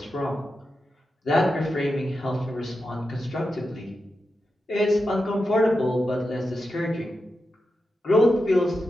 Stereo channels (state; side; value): normal; both; correlation 0.89